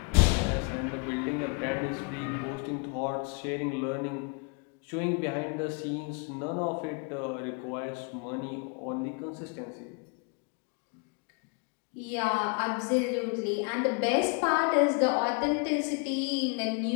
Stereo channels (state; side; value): quieter; right; 35.0 dB